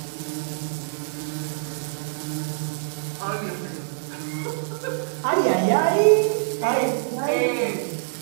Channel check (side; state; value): left; silent; 62 dB below the other